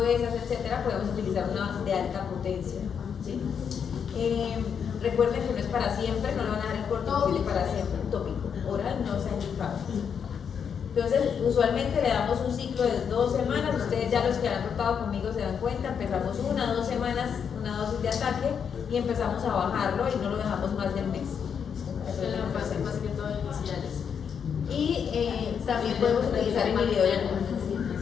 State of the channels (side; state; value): right; quieter; 7.2 dB